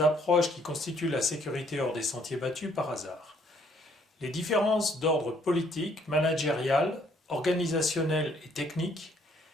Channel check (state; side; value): normal; both; correlation 0.65